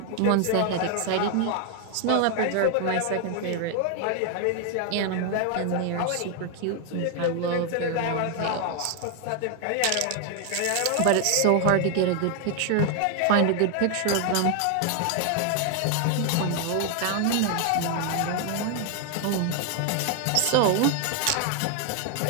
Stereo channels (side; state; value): both; different; correlation 0.01